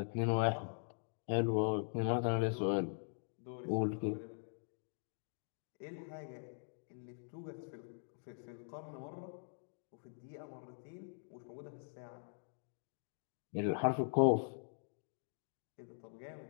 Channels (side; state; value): right; silent; digital silence